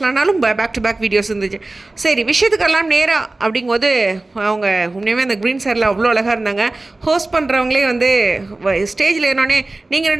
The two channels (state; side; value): quieter; left; 3.0 dB